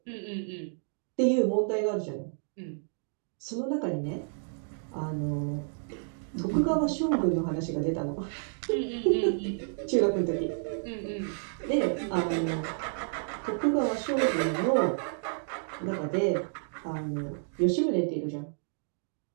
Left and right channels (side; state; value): left; silent; digital silence